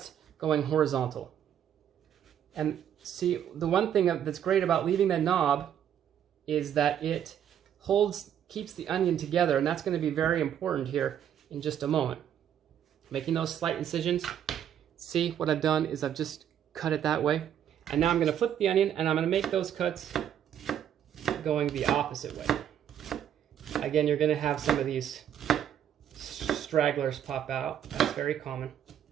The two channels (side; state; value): left; quieter; 9.7 dB